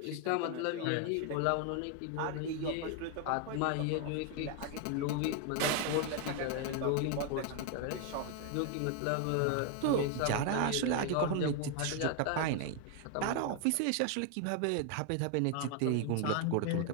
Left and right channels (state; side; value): different; both; correlation 0.01